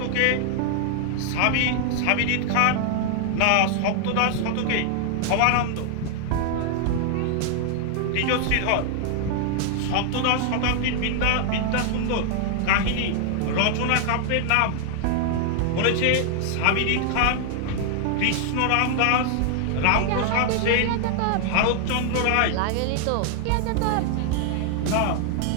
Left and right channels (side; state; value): both; different; correlation 0.00